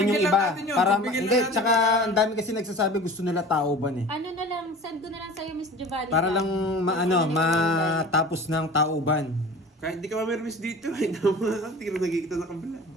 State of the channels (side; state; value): both; normal; correlation 0.40